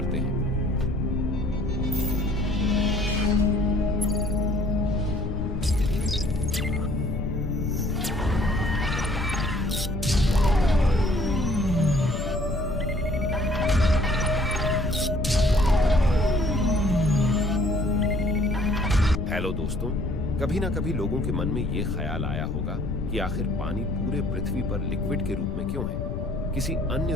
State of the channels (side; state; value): left; noise; rumble, 4 dB below the sound